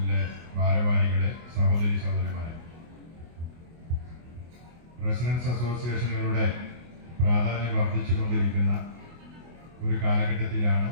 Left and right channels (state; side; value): late; left; 24 ms